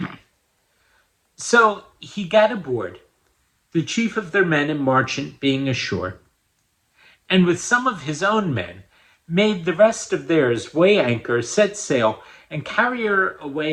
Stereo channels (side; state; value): both; identical; correlation 1.00